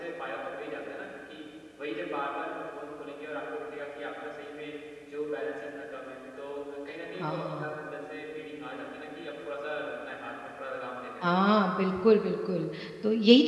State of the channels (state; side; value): identical; both; correlation 1.00